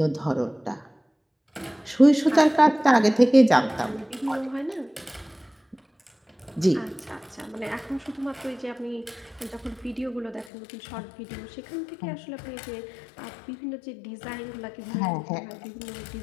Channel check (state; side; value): drops out; right; at 10.5 s